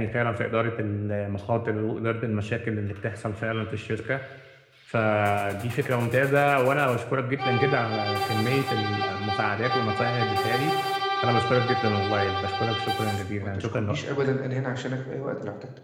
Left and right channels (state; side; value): identical; both; correlation 1.00